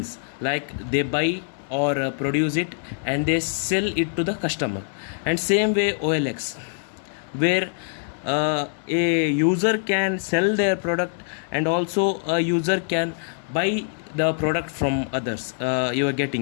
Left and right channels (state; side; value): silent; right; digital silence